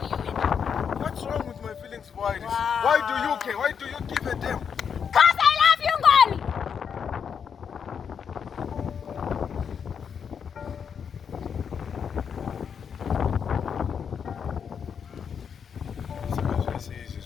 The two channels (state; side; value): quieter; right; 7.1 dB